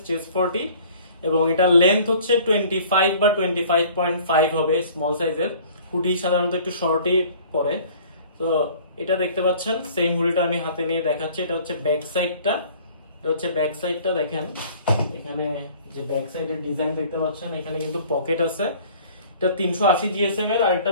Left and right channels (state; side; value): inverted; both; correlation -0.51